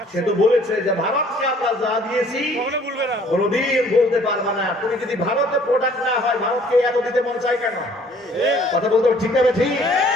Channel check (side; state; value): both; normal; correlation 0.57